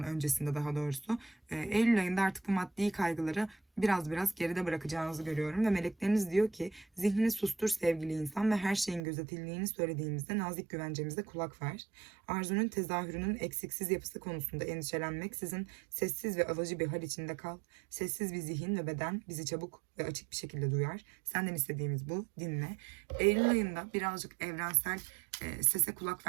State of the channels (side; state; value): left; drops out; at 9.0 s